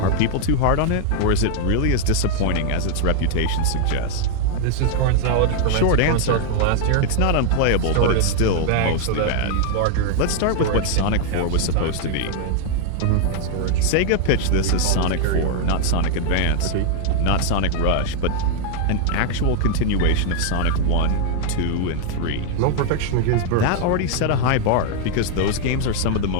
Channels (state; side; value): different; both; correlation 0.00